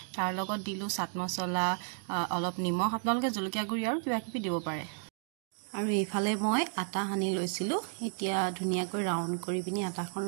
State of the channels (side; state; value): left; silent; 56 dB below the other